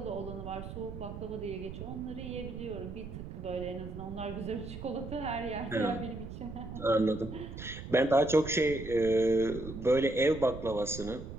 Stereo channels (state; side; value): noise; right; rumble, 10 dB below the sound